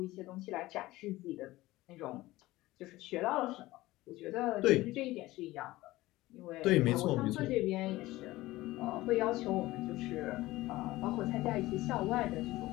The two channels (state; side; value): quieter; right; 18.1 dB